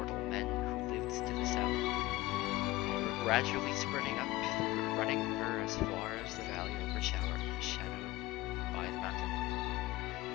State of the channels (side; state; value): right; quieter; 18.5 dB